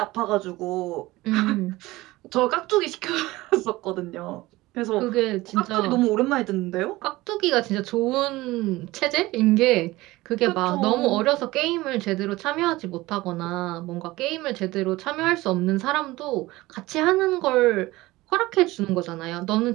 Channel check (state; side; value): quieter; left; 19.2 dB